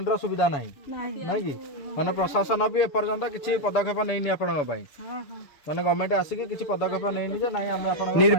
ସୁବିଧା ନାହିଁ ନାଇଁ କି ମାନେ ପ୍ରଶାସନ ବି ଏପର୍ଯ୍ୟନ୍ତ କିଛି ପଦକ୍ଷେପ ନେଇନି ଆପଣଙ୍କ ପାଇଁ ମାନେ ଗଭର୍ଣ୍ଣମେଣ୍ଟ ଆସିକି କିଛି ପଦକ୍ଷେପ ନେଇନି ଯେ ନାଇଁ ଆମେ ଆପଣଙ୍କ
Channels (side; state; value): right; late; 6.9 ms